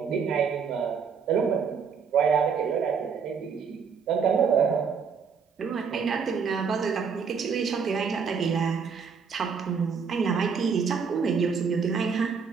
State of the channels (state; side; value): quieter; left; 6.1 dB